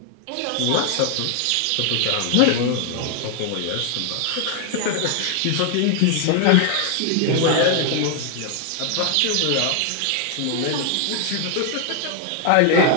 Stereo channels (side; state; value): both; different; correlation 0.00